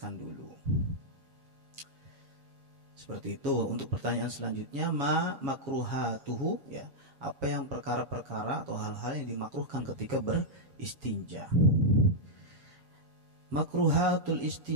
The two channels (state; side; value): late; left; 7.2 ms